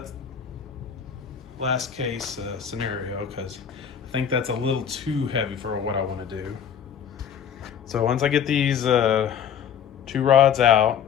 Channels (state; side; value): quieter; right; 8.1 dB